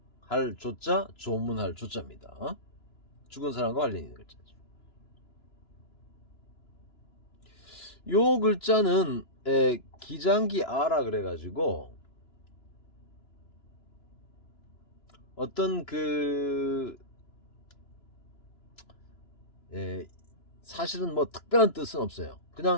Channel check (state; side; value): late; right; 2.9 ms